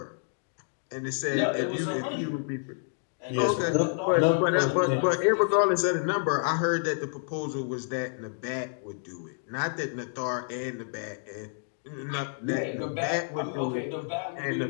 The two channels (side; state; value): right; silent; digital silence